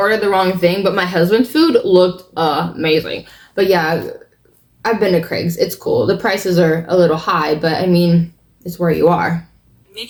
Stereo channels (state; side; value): identical; both; correlation 1.00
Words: the wrong thing, but my husband's food looked amazing. But yeah, I've been to Craig's. It's cool. The prices are a little high, but I mean, it's where you are.